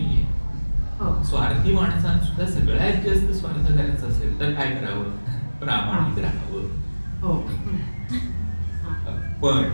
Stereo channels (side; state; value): both; inverted; correlation -1.00